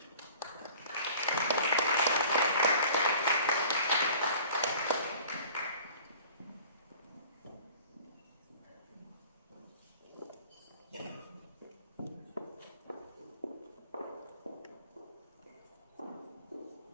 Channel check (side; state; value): both; inverted; correlation -0.46